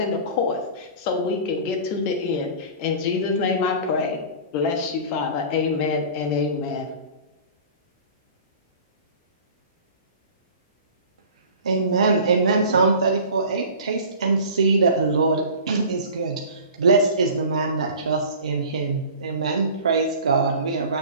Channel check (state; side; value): inverted; both; correlation -0.41